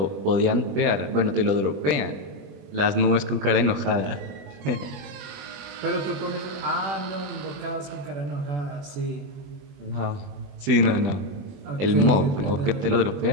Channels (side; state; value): left; late; 20 ms